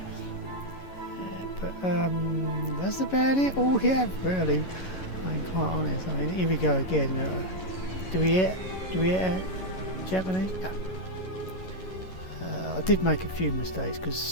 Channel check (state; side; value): late; right; 11 ms